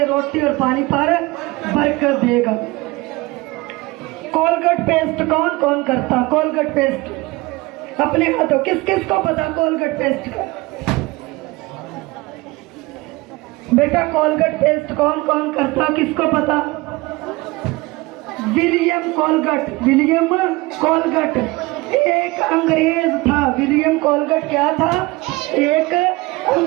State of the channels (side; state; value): left; quieter; 22.3 dB